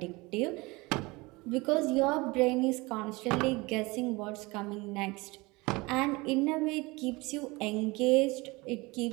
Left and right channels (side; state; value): left; quieter; 23.7 dB